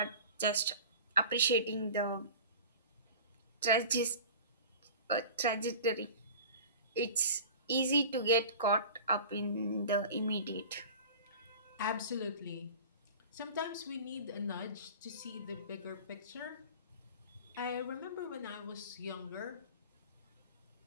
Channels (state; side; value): inverted; both; correlation -0.38